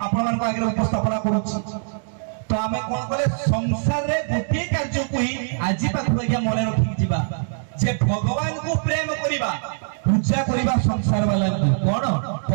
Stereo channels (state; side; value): silent; left; digital silence